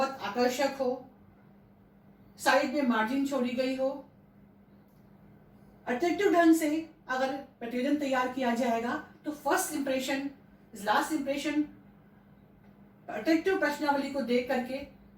आकर्षक हो, साइड में मार्जिन छोड़ी गई हो। अट्रैक्टिव ढंग से अगर प्रतिवेदन तैयार किया जाएगा तो first impression last impression attractive प्रश्नावली को देख करके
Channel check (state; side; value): identical; both; correlation 1.00